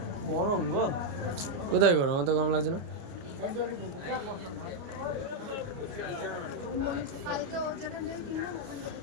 গরম গো, কোথায় গরম? আমার তো গরম লাগছে না।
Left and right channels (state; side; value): late; left; 29 ms